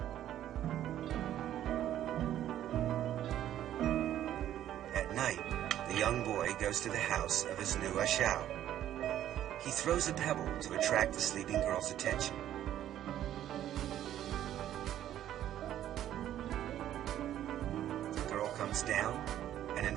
At night, the young boy goes to the house of his new ashao. He throws a pebble to attract the sleeping girl's attention. The girl comes down and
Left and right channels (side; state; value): left; quieter; 11.8 dB